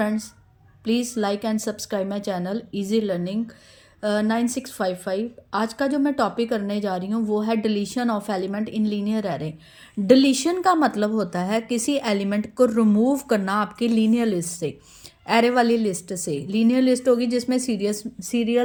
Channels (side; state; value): both; identical; correlation 1.00